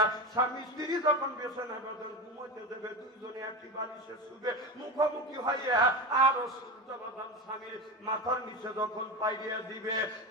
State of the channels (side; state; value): both; normal; correlation 0.21